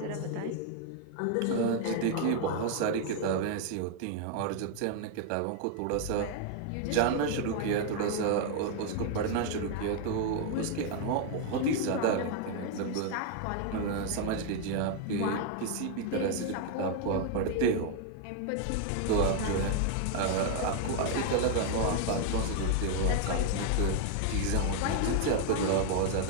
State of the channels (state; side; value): different; both; correlation 0.00